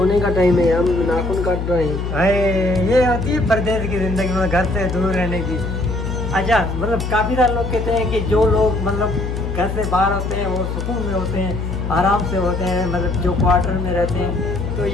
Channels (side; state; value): left; noise; hum, 4 dB below the sound